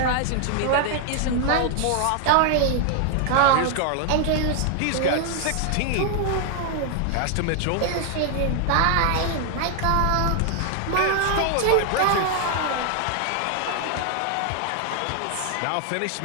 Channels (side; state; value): both; different; correlation 0.00